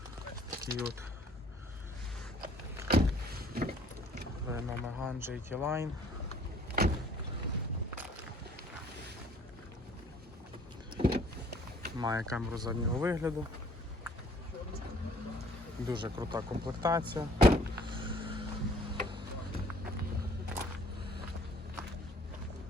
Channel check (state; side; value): normal; both; correlation 0.57